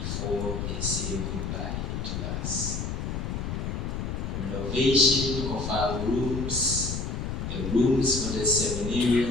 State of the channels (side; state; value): left; noise; rumble, 3 dB below the sound